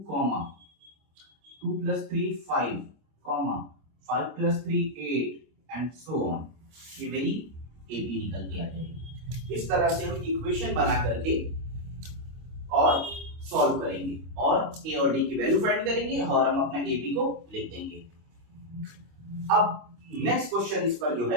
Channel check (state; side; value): late; left; 25 ms